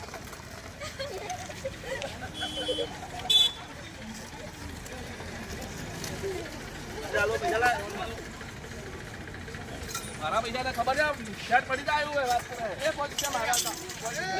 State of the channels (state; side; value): identical; both; correlation 1.00